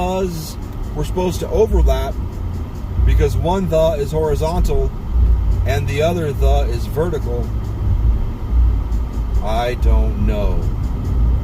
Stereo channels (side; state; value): both; identical; correlation 1.00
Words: were supposed to overlap, because one the is horizontal and the other the is vertical. I don't know.